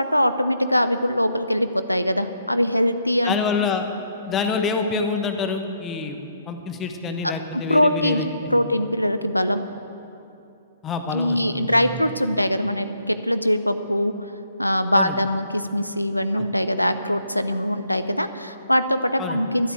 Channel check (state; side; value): inverted; both; correlation -0.75